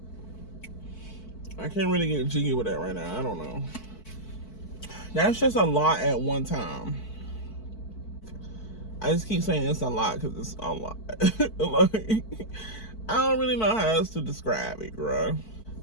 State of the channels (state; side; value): late; right; 4.5 ms